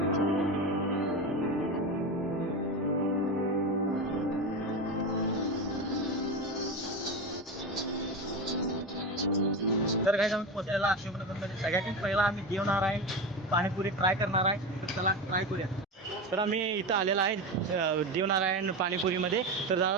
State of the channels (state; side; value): normal; both; correlation 0.20